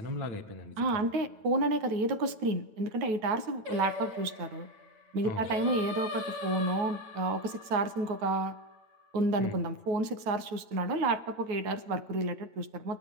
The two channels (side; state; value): left; late; 9.1 ms